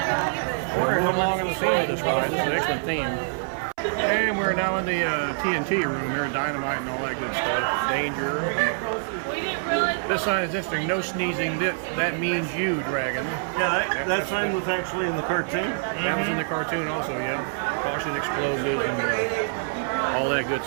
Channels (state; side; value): silent; left; 61 dB below the other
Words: We're moving along in the theme of this ride. This is an excellent theme. And we're now in the TNT room here, dynamite and all that good stuff. Danger. This sign is interesting. No sneezing. That means you, Dragon. Yeah, that sign was actually in the cartoon. That was in the cartoon also, yeah. Caution explosives and all that good